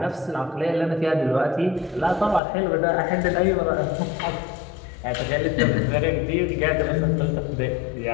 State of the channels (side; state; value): right; drops out; at 2.4 s